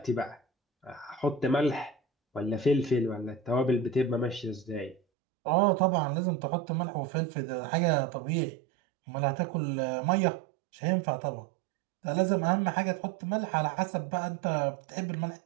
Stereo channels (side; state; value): left; drops out; at 5.0 s